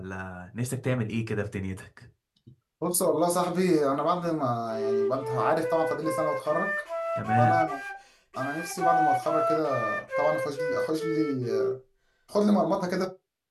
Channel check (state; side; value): identical; both; correlation 1.00